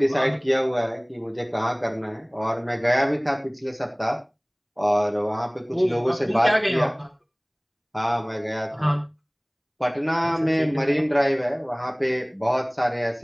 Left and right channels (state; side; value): identical; both; correlation 1.00